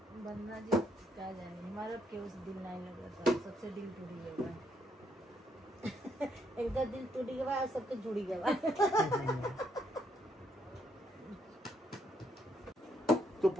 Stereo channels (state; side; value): normal; both; correlation 0.74